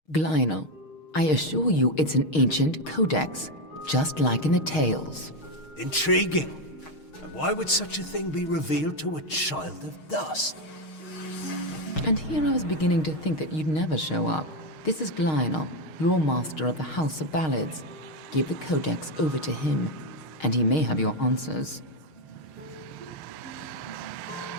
Glynel, I assure you it's an ancient codex, just like in the tales. Intriguing. And why would such a thing be revealed to a child of dust? And here I was beginning to think that you'd never show up. This is Glynel, your master of the House of Ballads. Give the codex over to him, and he may have your answers.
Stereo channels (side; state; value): right; late; 6.4 ms